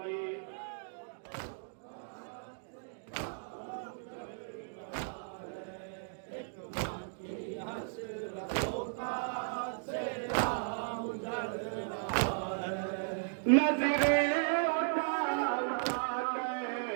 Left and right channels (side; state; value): left; silent; digital silence